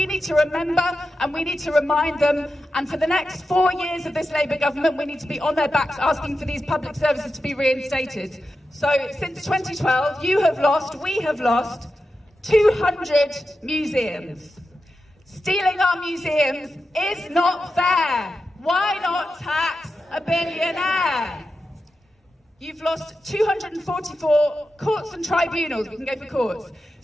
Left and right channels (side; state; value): both; normal; correlation 0.90